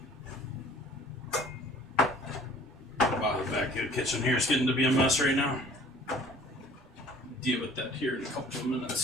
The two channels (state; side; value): normal; both; correlation 0.51